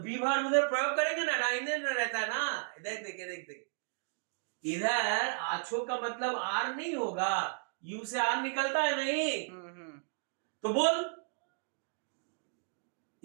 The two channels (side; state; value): left; silent; digital silence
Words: उधर प्रयोग करेंगे ना, डाइने ना रहता है ना। देख देख देख देख, इधर आछो का मतलब आर नहीं होगा, यू से आर निकलता है नहीं। तो बोल,